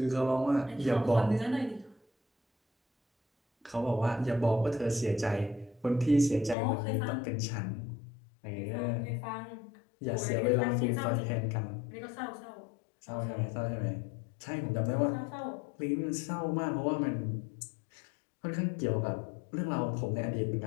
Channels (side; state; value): right; drops out; at 6.6 s